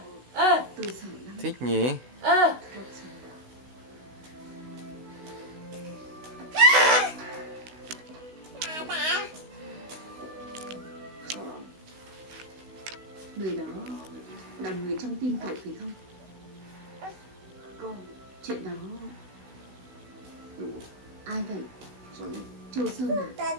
Thích nhỉ? Người đó là người trong tim cậu phải không? Chuyện đó ai vậy? Châu Sơn à?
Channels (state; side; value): late; left; 16 ms